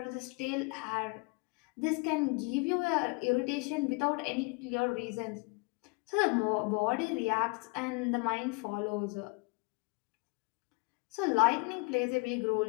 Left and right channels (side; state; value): right; quieter; 29.0 dB